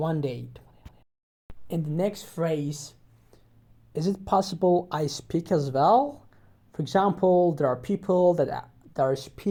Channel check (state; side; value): identical; both; correlation 1.00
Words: day. In the next phrase, is it possible I speak as well? For example, there are people that are